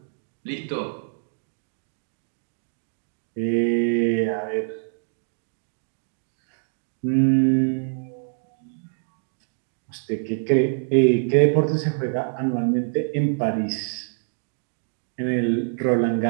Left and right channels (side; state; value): left; silent; digital silence